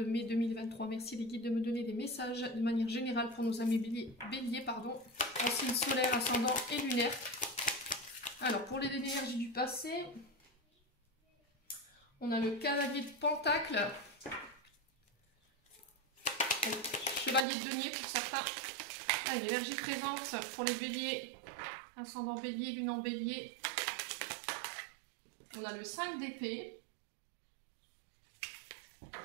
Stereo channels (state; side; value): drops out; left; at 17.4 s